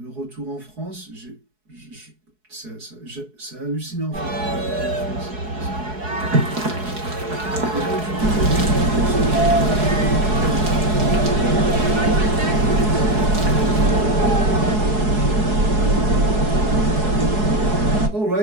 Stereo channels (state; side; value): late; left; 4.7 ms